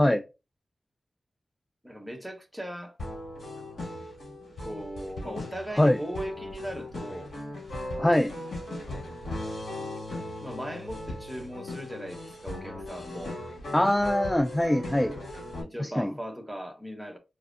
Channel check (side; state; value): both; normal; correlation 0.97